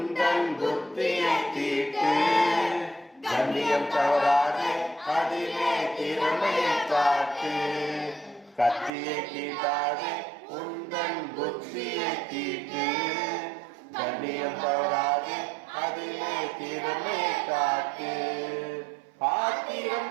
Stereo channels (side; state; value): left; drops out; at 8.9 s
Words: புத்தியை தீட்டு கண்ணியம் தவறாதே அதிலே திறமையை காட்டு கத்தியை தீட்டாதே உந்தன் புத்தியை தீட்டு கண்ணியம் தவறாதே அதிலே திறமையை காட்டு ஆத்திரம்